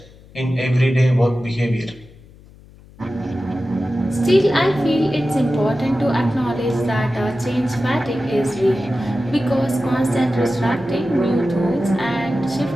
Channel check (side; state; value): left; noise; hum, 23 dB below the sound